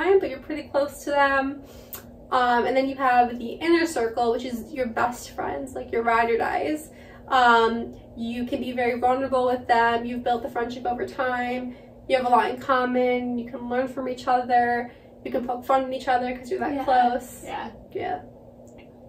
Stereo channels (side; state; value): both; identical; correlation 1.00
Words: but you're pretty close to them. And then you have the inner circle, which is your best friends, like your ride or dies. You can be very vulnerable with them. You've built the friendship over time. You have a lot in common. You can learn from each other. You can poke fun at each other because you're that close. Yeah. Yeah.